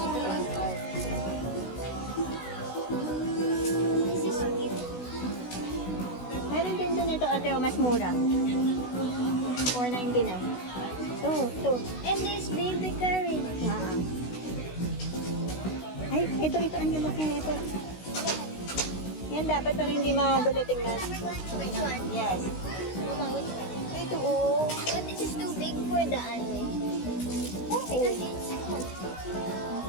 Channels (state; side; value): late; right; 16 ms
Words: This is cute. Meron din doon ito, ate, mas mura. 4.99. Ito. And there's baby curry. Ay, ito, ang lalaki ito. Yan, dapat para hindi magulo tingnan. Which one? Yes. Mama, which one? Ito, oh. But this is too big for the ano. Oo. Because it's